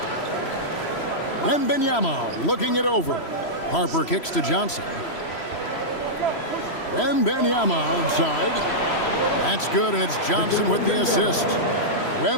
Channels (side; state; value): right; late; 3.0 ms